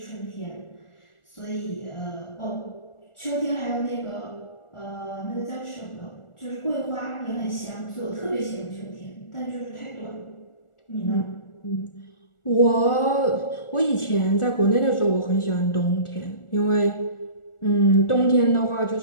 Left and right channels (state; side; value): late; right; 1.4 ms